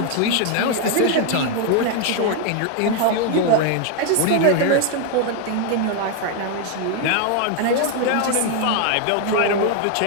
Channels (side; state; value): both; different; correlation 0.01